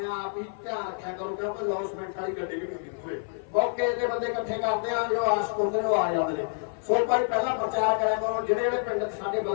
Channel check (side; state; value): right; silent; 56 dB below the other